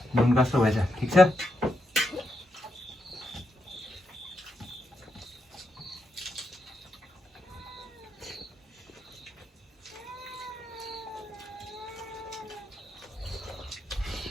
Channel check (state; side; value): normal; both; correlation 0.84